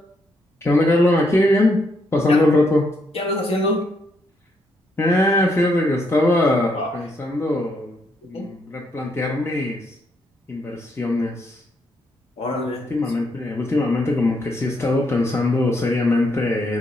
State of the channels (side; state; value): both; normal; correlation 0.76